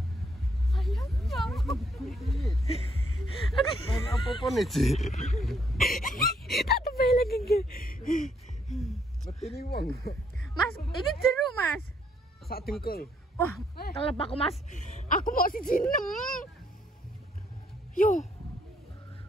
Ayo. Main apa-apa nih, Ci? Tak tebel lagi enggak. Metini wong. Mas, ini jeruk, Mas. Sak dengkul. Wah, kelep aku, Mas. Aku mau siji 6. Yo.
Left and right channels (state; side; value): normal; both; correlation 0.70